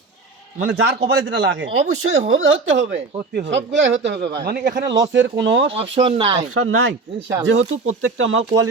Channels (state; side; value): quieter; left; 3.9 dB